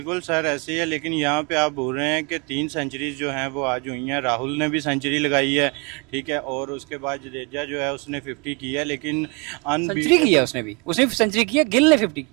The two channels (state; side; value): quieter; left; 31.1 dB